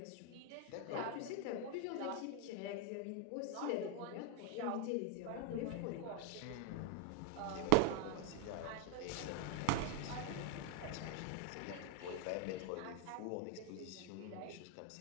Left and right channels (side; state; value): both; different; correlation 0.00